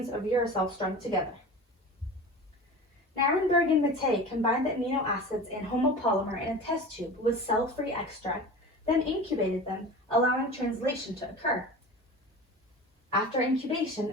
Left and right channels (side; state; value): both; normal; correlation 0.34